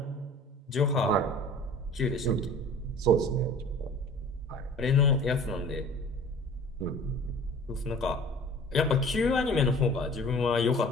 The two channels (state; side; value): normal; both; correlation 0.44